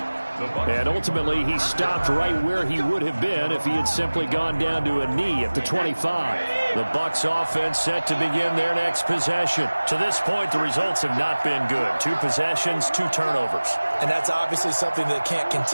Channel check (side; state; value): both; inverted; correlation -1.00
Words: And ultimately, he stopped right where he would have been if he had simply gone down to a knee at the 25. The Bucs offense set to begin their next possession. To this point, the results have not been good. 2 possessions, 2 turnovers. And that's obviously something that can't